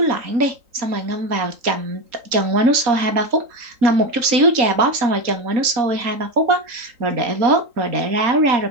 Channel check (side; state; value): left; late; 3.9 ms